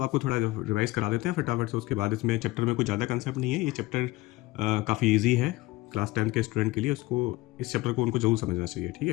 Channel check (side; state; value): right; quieter; 19.2 dB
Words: आपको थोड़ा रिवाइज करा देते हैं फटाफट से। उसके बाद इसमें चैप्टर में कुछ ज़्यादा कंसेप्ट नहीं है, ये चैप्टर काफ़ी इजी है क्लास 10 के स्टूडेंट के लिए। उसको इस चैप्टर को उनको जरूर समझना चाहिए। ठीक